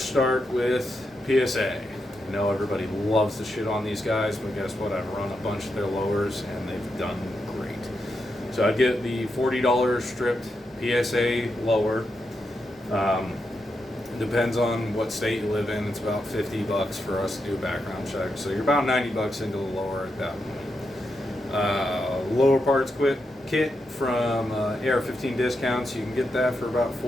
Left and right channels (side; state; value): both; normal; correlation 0.85